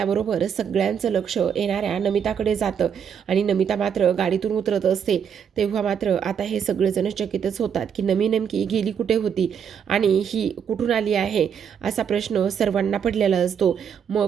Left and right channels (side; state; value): left; quieter; 7.7 dB